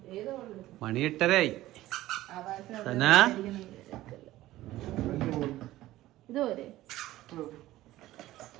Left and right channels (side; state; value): left; quieter; 15.8 dB